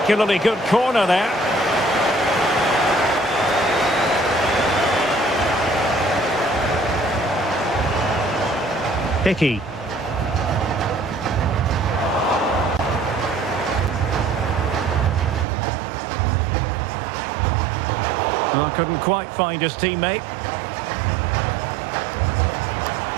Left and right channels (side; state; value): left; drops out; at 15.5 s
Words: good corner there. Hickey. Well, couldn't quite find his teammate.